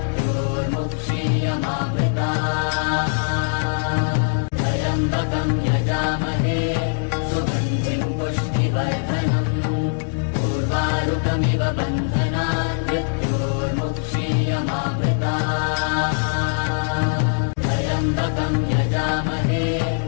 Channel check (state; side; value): silent; right; digital silence